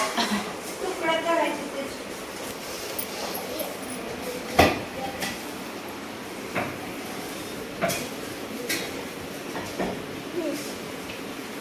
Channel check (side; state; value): both; identical; correlation 1.00